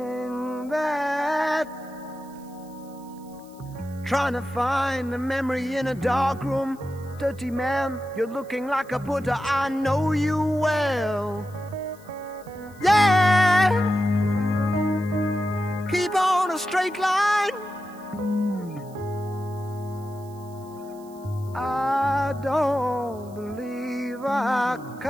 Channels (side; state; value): right; noise; hiss, 27 dB below the sound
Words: that. Trying to find a memory in a dark room. Dirty man, you're looking like a Buddha. I know you well. Yeah, keep on a straight line. I don't believe I